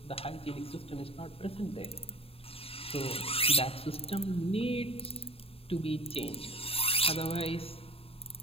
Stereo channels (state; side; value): late; right; 0.28 ms